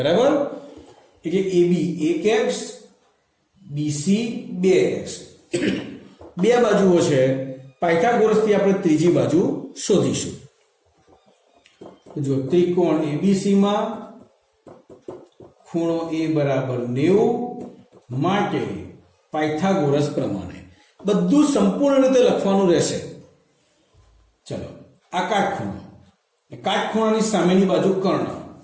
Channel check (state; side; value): identical; both; correlation 1.00